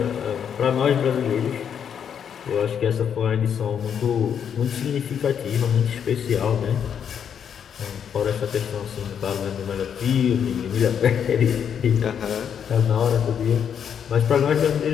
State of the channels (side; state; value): right; quieter; 8.1 dB